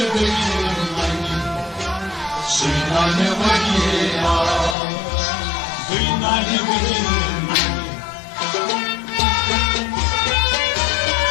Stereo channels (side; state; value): right; drops out; at 4.8 s